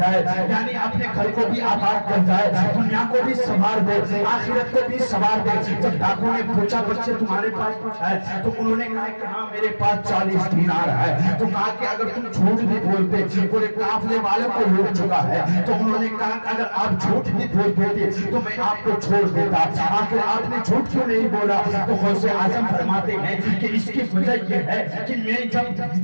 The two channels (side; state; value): both; inverted; correlation -1.00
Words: یعنی اپنے گھر کو بھی آباد کر جائے, دنیا کو بھی سنوار دے, آخرت کو بھی سنوار دے. جب ڈاکو نے پوچھا بچے تمہارے پاس کچھ ہے, تو انہوں نے کہا کہ ہاں میرے پاس 40 دینار ہے. تو کہا کہ اگر تم جھوٹ بھی بولتے پورے قافلے والوں کو لوٹ چکا ہے, تو انہوں نے کہا کہ اگر آپ جھوٹ بھی بول دیتے تو میں آپ کو چھوڑ دیتا, آخر آپ نے جھوٹ کیوں نہیں بولا. تو غوث اعظم فرماتے ہیں کہ اس کی وجہ یہ ہے کہ میں جب